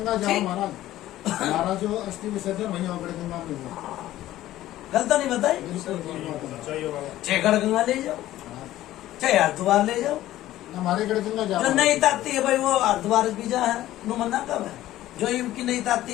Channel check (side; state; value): right; quieter; 14.5 dB